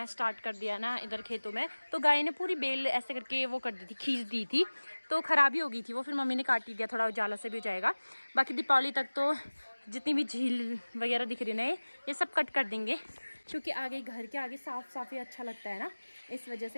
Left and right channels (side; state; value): both; inverted; correlation -1.00